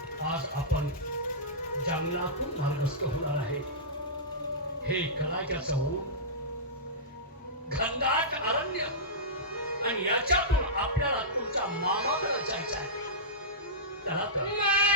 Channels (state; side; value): normal; both; correlation -0.17